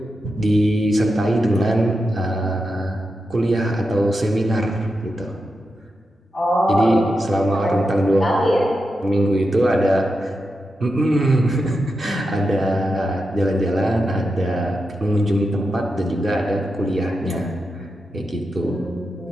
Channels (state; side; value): normal; both; correlation 0.88